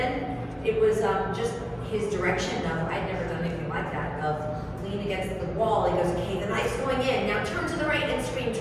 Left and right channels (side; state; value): both; identical; correlation 1.00